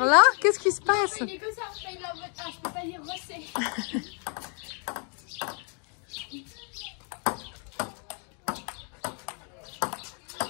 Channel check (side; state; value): right; quieter; 39.7 dB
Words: là, qu'est-ce qui se passe? Il est comme ça. Il est en mode, je peux pas lire rosé.